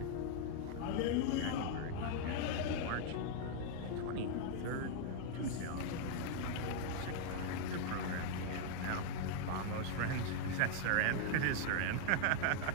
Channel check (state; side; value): different; both; correlation 0.00